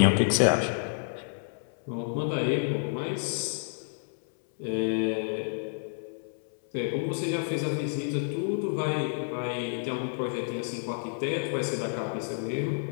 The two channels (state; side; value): silent; right; 58 dB below the other